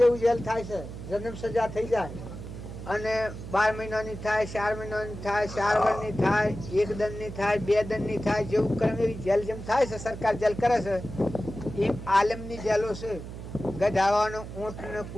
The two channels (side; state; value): right; noise; hum, 10 dB below the sound